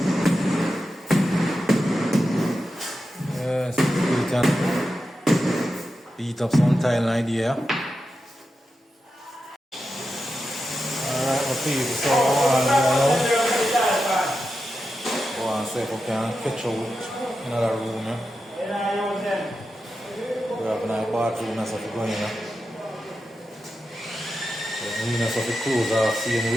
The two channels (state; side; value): normal; both; correlation 0.90